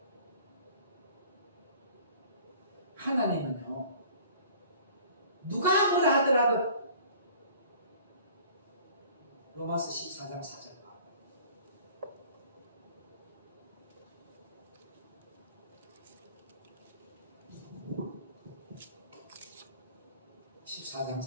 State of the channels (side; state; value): both; inverted; correlation -0.49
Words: 하나님은요, 누가 뭐라 하더라도 로마서 14장 4절 14장